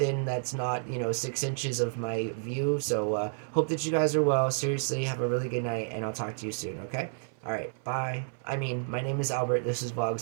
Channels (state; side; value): silent; left; 58 dB below the other